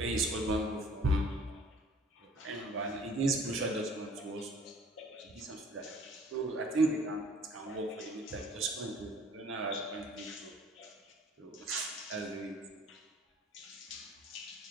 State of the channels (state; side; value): normal; both; correlation 0.53